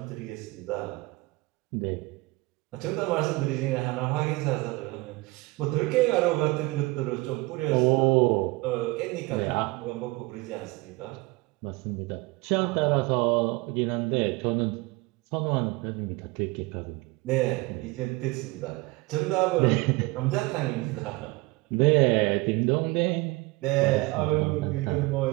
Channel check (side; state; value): left; quieter; 23.1 dB